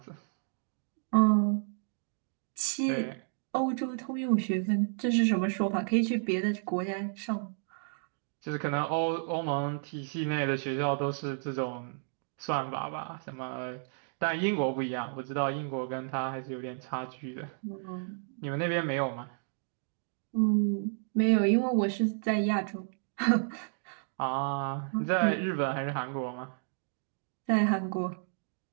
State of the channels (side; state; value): left; silent; digital silence